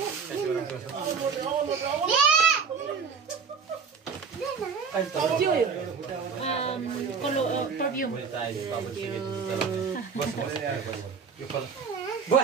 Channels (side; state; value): left; quieter; 5.8 dB